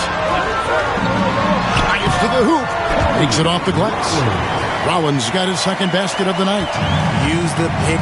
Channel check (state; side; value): identical; both; correlation 1.00